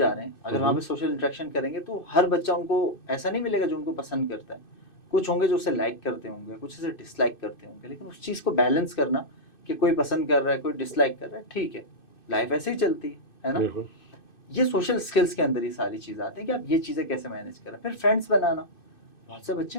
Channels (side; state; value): right; late; 2.6 ms